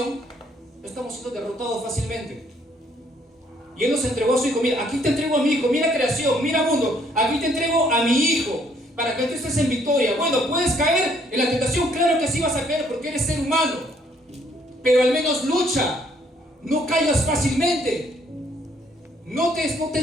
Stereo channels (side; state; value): both; normal; correlation 0.66